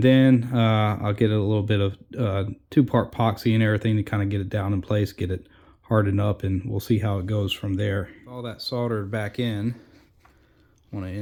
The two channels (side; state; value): both; identical; correlation 1.00